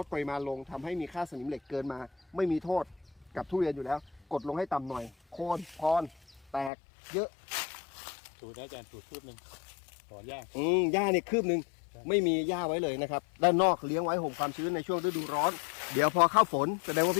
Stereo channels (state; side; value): drops out; right; at 6.7 s